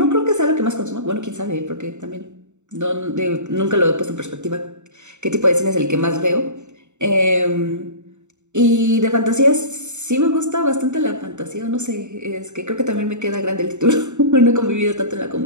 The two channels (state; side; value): late; left; 0.83 ms